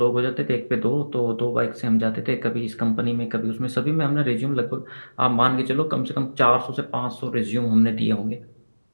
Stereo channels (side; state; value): both; inverted; correlation -1.00